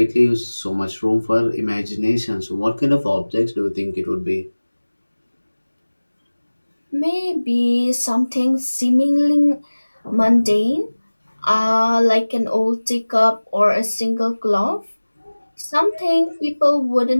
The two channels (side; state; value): both; inverted; correlation -1.00